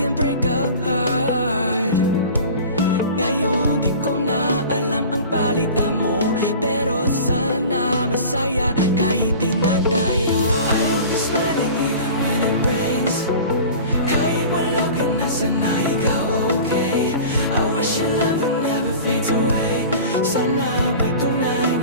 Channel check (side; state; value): both; inverted; correlation -0.39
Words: break a heart. Ngayon di ko na alam ang palitan mo.